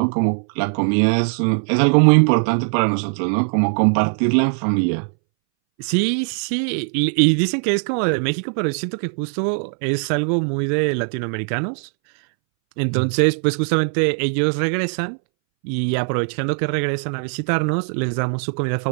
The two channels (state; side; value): silent; left; 63 dB below the other